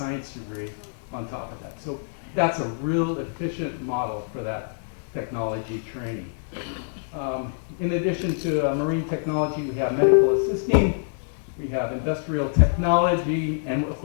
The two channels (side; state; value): right; silent; digital silence